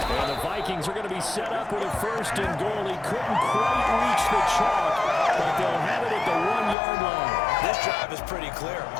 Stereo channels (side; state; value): right; drops out; at 6.8 s